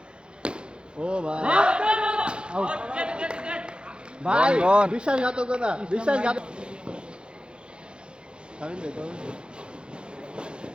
ও ভাই আউট ভাই বিশ্বাসঘাতকতা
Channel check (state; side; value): late; left; 0.053 ms